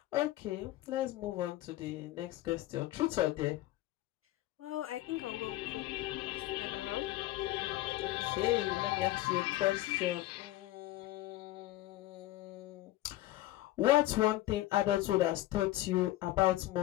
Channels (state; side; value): quieter; right; 15.9 dB